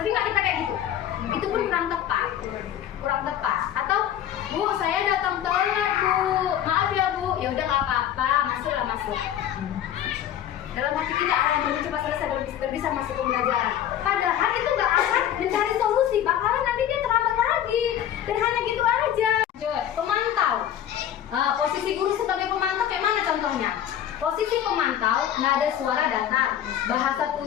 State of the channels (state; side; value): quieter; right; 10.7 dB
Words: nggak kita kayak gitu? Itu pun kurang tepat. Kurang tepat. Atau Bu saya datang telat Bu, maaf ya Bu. Ya udah nggak apa-apa, masuklah masuk. Dalam hati kita yang belum cepat selesai baru bisa masuk ke pembelajaran. Padahal itu nggak akan mencari solusi, bakalan nanti dia terlambat lagi. Dan hanya gitu aja. Pemantau. Posisi guru sebagai pemantau kayak mana contohnya? Posisi pemantau, nada suara datar, bahasa